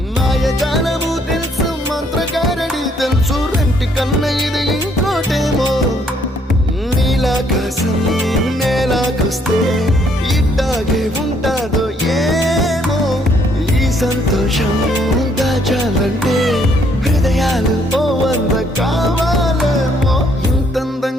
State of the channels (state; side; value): normal; both; correlation 0.68